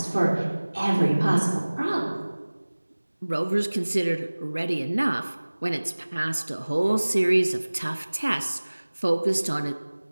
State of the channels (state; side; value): inverted; both; correlation -1.00